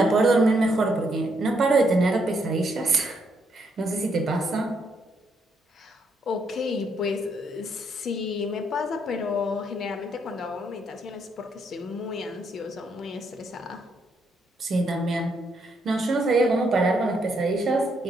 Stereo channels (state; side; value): normal; both; correlation 0.75